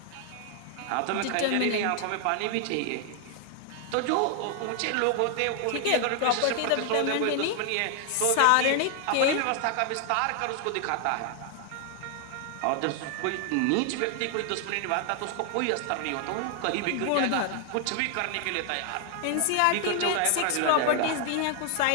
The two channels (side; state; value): both; different; correlation 0.00